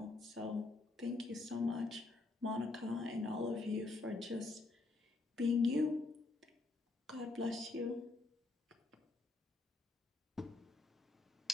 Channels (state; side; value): quieter; right; 3.4 dB